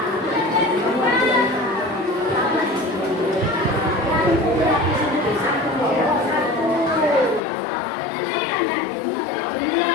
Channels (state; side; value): drops out; right; at 7.4 s